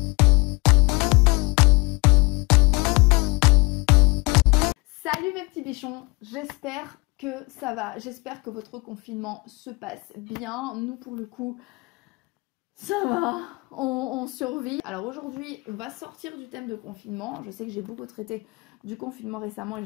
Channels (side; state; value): right; quieter; 26.4 dB